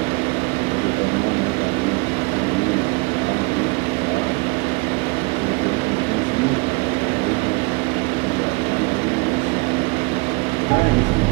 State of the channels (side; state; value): left; quieter; 27.4 dB